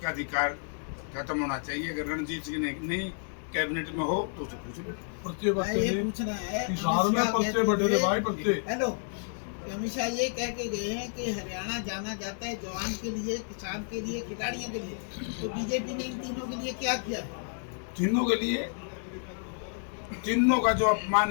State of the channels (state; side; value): silent; right; 58 dB below the other